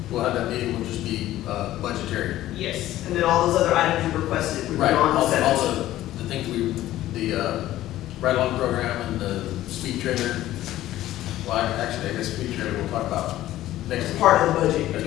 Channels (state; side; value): quieter; right; 14.4 dB